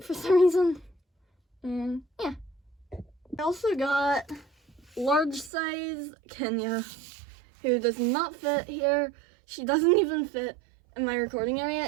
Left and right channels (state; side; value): drops out; left; at 5.5 s